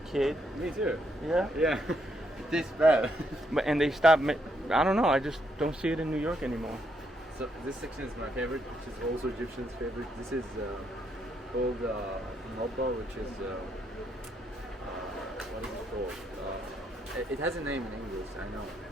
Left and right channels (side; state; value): both; normal; correlation 0.76